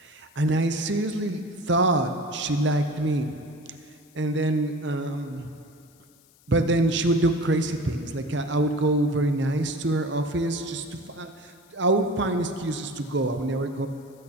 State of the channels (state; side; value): noise; left; hiss, 30 dB below the sound